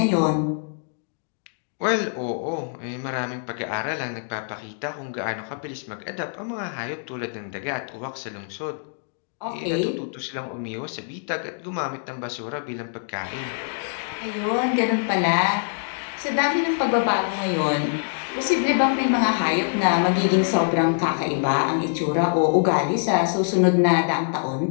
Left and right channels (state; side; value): silent; right; digital silence